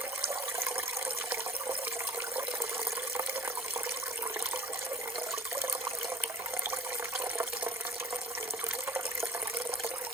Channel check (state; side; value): normal; both; correlation 0.46